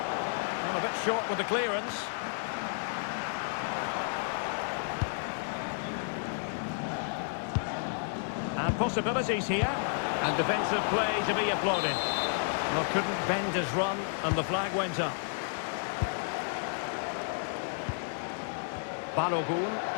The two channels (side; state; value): right; silent; digital silence